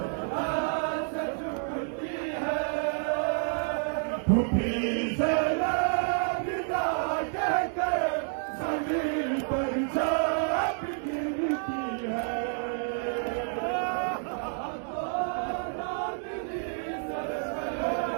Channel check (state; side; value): silent; left; 58 dB below the other